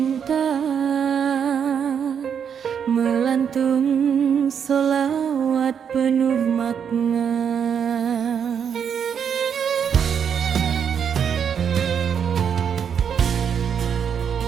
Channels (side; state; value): left; quieter; 7.6 dB